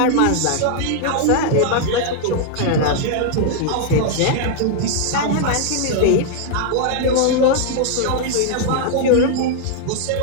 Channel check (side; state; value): both; different; correlation 0.00